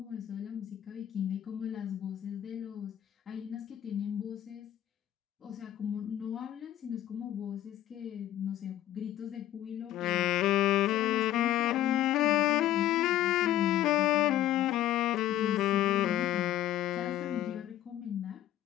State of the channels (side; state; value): right; quieter; 12.8 dB